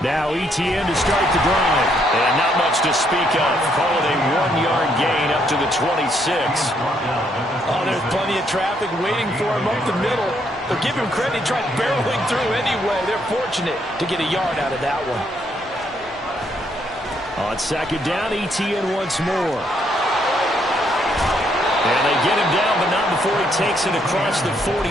Now ETN to start the drive. And not much to speak of. Call it a 1-yard gain up to the 26. Oh, there's plenty of traffic waiting for him up the middle. But give him credit, he tried barreling through anyway. They're fortunate to get a yard out of that one. On second down, ETN once more. And they get him down, but not before he takes it across the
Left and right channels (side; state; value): both; normal; correlation 0.72